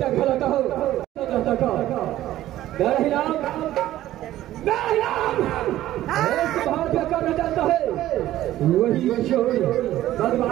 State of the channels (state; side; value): quieter; left; 14.1 dB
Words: खिलाता हो बाहर क्या करना चाहता है वही